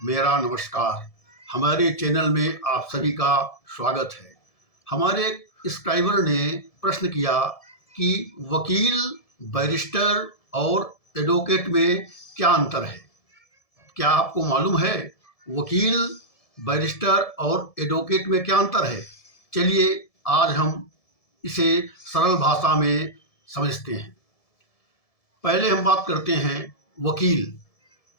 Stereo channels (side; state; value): right; late; 1.7 ms